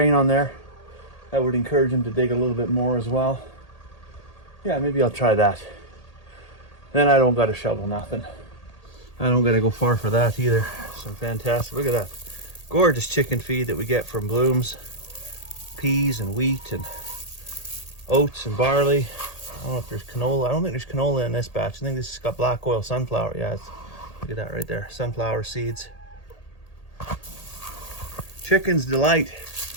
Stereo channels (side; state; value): right; late; 1.8 ms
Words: on there. That would encourage them to dig a little bit more as well. Yeah, maybe I'll try that. Then I don't gotta shovel nothing. I don't gotta go far for that either. Some fantastic, look at that. Gorgeous chicken feed that we get from Blooms. peas and wheat and oats and barley. I don't know if there's canola. I don't think there's canola in this batch. I think this has got black oil sunflower. Yeah, look at that right there. Sunflower seeds. Chicken's delight.